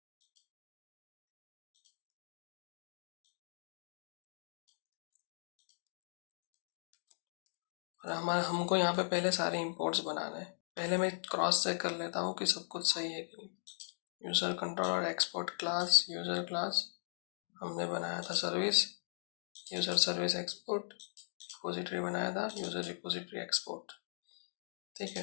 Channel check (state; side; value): silent; right; digital silence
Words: और हमारे हमको यहाँ पे पहले सारे इंपोर्ट्स बनाने हैं। पहले मैं क्रॉस चेक कर लेता हूँ कि सब कुछ सही है कि नहीं। User controller export class, user class हमने बनाया था service, user service export, repository बनाया था यूजर रिपोजिटरी एक्सपोर्ट, ठीक